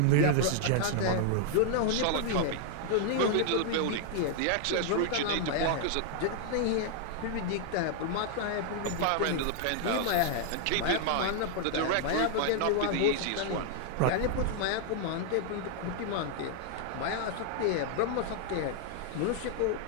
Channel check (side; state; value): both; different; correlation -0.01